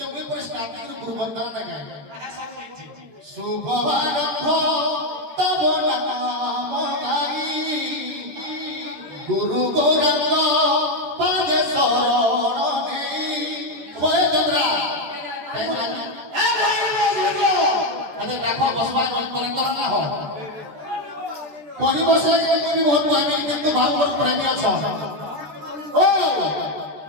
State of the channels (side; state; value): left; late; 13 ms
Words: মুই পরে স্টার্টিং রে গুরু বন্দনা না গায় শুভবারম্ভ তব নাম গাই গুরু গৌরঙ্গ পাদে শরণ নেই কয়ে চন্দ্রা আরে দেখো বসবার করে না হয় কহি বসে তুমি বহুত প্রেমী কিন্তু ভাগবত প্রেমী অছ ও